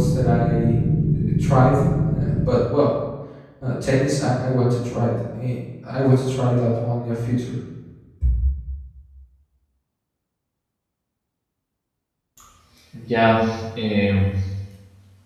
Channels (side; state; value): both; identical; correlation 1.00